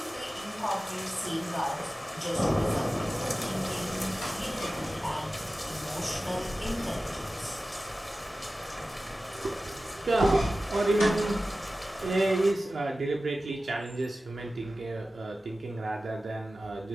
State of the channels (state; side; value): normal; both; correlation 0.95